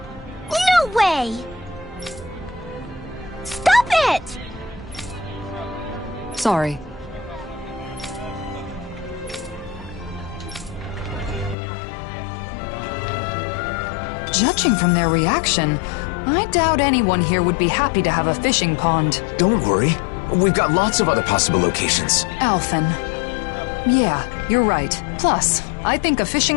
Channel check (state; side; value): drops out; right; at 11.6 s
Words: No way! Stop it! Sorry. Judging from their reaction, I doubt anyone here would be happy to have a fishing pond. Don't worry. We've got lots of other possible locations. Alphen. Yeah, you're right. Plus, I think a